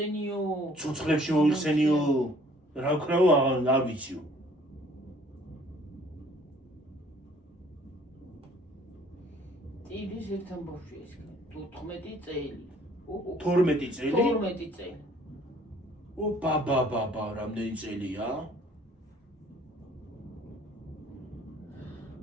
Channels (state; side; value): normal; both; correlation 0.57